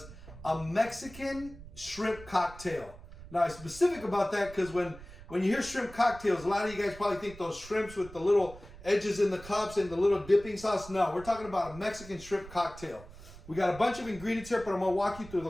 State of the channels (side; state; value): right; noise; rumble, 17 dB below the sound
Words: a Mexican shrimp cocktail. Now, I'm specific about that because when you hear shrimp cocktails, a lot of you guys probably think those shrimps with the little edges in the cups and the little dipping sauce. No, we're talking about a Mexican shrimp cocktail. We got a bunch of ingredients here, but I'm going to walk you through